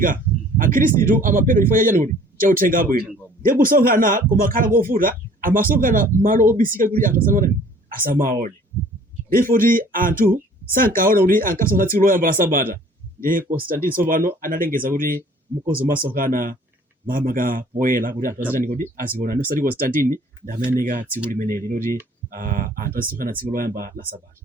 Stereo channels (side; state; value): both; normal; correlation 0.53